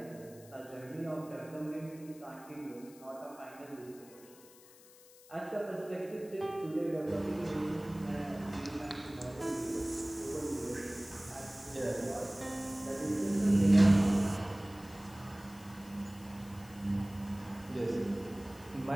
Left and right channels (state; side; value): noise; left; hiss, 22 dB below the sound